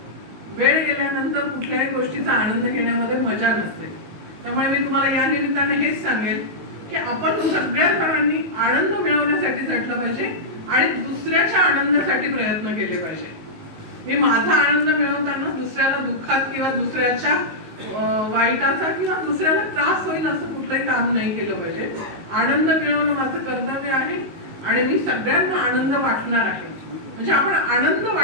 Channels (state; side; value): late; left; 19 ms